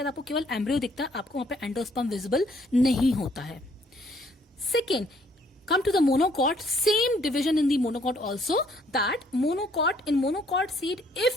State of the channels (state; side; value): normal; both; correlation 0.64